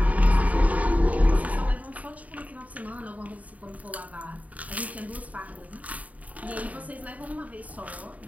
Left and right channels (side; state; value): left; late; 0.071 ms